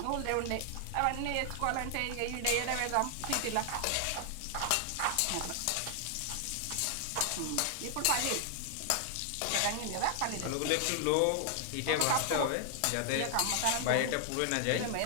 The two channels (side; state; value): both; different; correlation 0.00